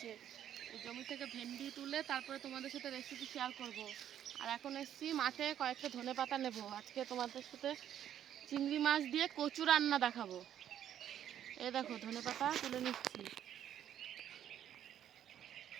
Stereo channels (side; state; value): left; quieter; 10.4 dB